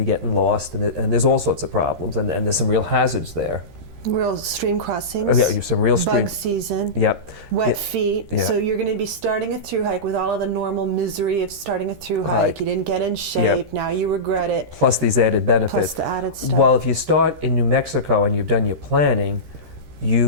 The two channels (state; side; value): late; left; 13 ms